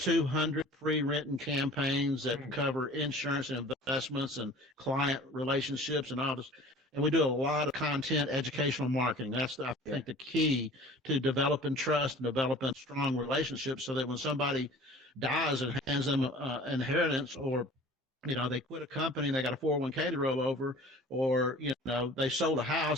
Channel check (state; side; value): normal; both; correlation 0.45